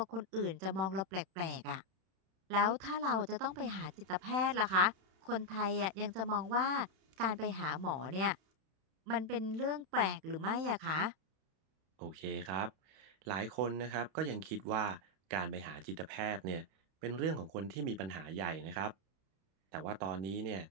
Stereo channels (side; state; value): left; late; 31 ms